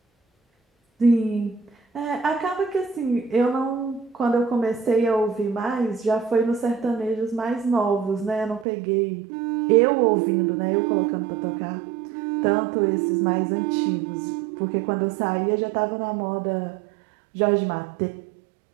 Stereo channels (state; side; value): drops out; left; at 8.7 s